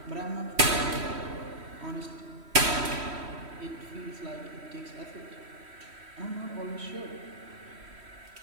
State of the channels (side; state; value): left; late; 3.1 ms